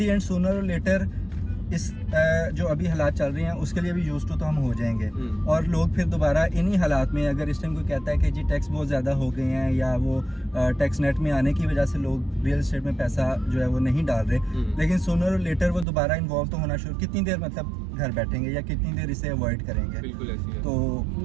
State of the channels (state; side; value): drops out; left; at 15.9 s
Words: एंड सूनर और लेटर इस जो अभी हालात चल रहे हैं उसके लिए भी यूज टू तो हम हो जाएंगे, और लोग फिर दोबारा इन्हीं हालात में, अगर इस टाइम कोई कहता है कि जी टैक्स बहुत ज़्यादा हो गए हैं या वो टैक्स नेट में आने की वजह से लोग रियल एस्टेट में पैसा जो है वो नहीं डाल रहे, लेकिन सूनर और लेटर वो दोबारा इन्वॉल्व तो होना शुरू, कितनी देर मतलब घर बैठेंगे या कितनी देर इसे अवॉइड करेंगे। बिल्कुल ऐसी है। तो